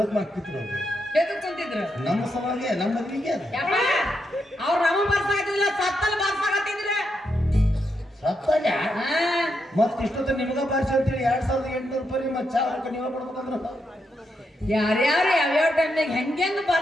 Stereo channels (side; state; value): both; normal; correlation 0.82